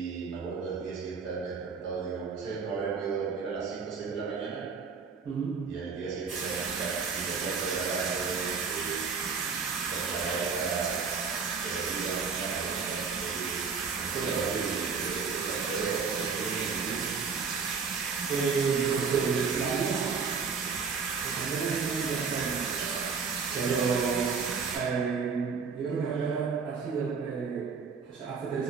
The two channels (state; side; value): quieter; left; 5.4 dB